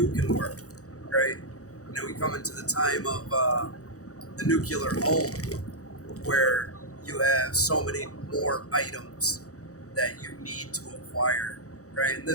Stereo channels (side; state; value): right; late; 0.66 ms